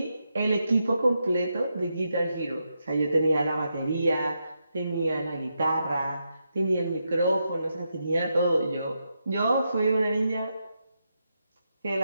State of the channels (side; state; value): both; inverted; correlation -0.84